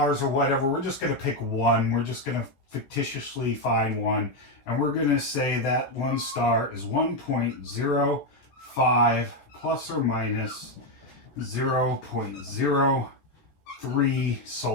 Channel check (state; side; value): late; right; 15 ms